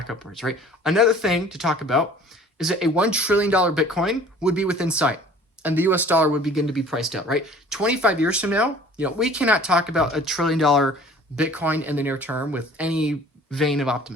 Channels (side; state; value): both; normal; correlation 0.49